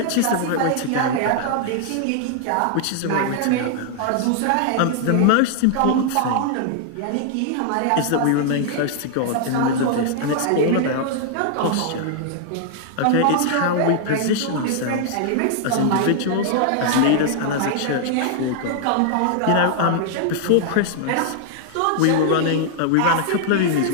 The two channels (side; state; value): both; different; correlation 0.00